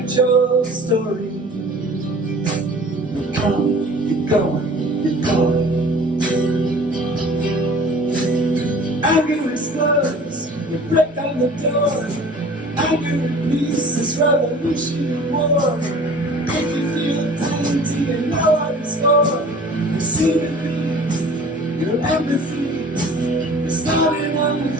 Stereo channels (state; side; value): normal; both; correlation 0.46